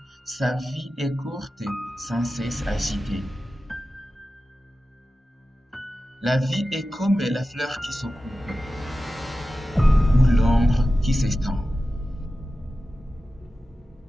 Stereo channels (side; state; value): both; normal; correlation 0.94